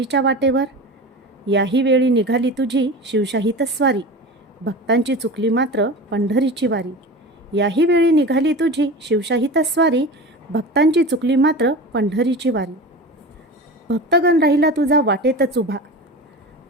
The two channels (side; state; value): both; normal; correlation 0.31